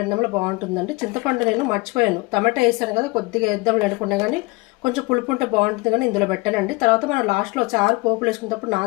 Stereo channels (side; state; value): right; quieter; 25.1 dB